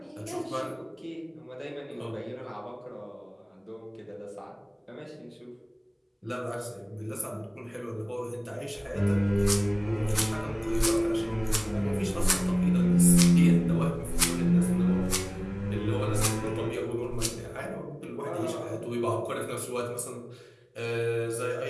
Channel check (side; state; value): both; identical; correlation 1.00